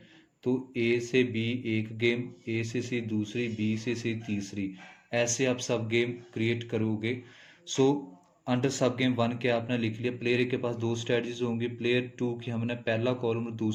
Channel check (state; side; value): identical; both; correlation 1.00